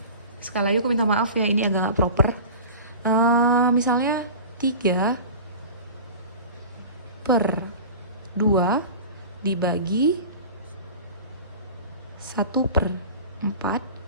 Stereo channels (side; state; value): both; inverted; correlation -0.36